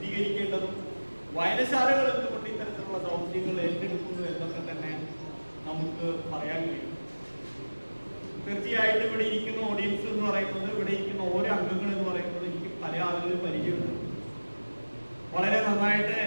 വായനശാലകൾ എന്തുകൊണ്ട് ഇത്തരത്തിലുള്ള ദൗത്യങ്ങൾ ഏറ്റെടുക്കുന്നു എന്നൊക്കെ തന്നെ നമുക്ക് പറയാൻ കഴിയും. തീർച്ചയായിട്ടും ഇവിടെ ഇരിക്കുന്ന ഓഡിയൻസ് എന്ന് പറയുന്നത്, ഇവിടെ ഇരിക്കുന്ന ഓരോ അംഗങ്ങൾ എന്ന് പറയുന്നത് എനിക്ക് പല ആളുകളും പരിചയമുണ്ട്. വളരെ നന്നായിട്ട്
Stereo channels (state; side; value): inverted; both; correlation -1.00